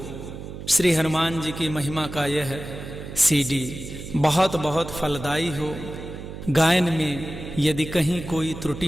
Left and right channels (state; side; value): noise; right; hum, 10 dB below the sound